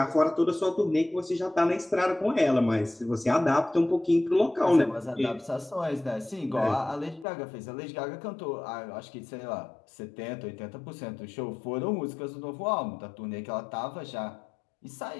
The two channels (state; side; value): drops out; right; at 7.2 s